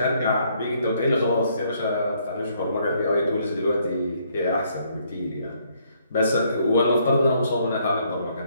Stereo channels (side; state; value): both; inverted; correlation -0.69